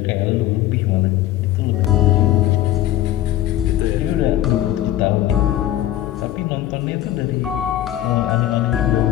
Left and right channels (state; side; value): quieter; right; 13.4 dB